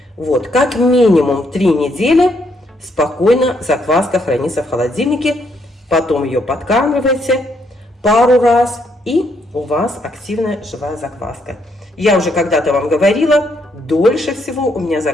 Вот, как минимум 3 недели спокойно закваска хранится в холодильнике, потом ее подкармливаете пару раз, и у вас активная живая закваска. Я уже когда-то вам говорила, дольше всего у меня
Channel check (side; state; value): both; normal; correlation 0.74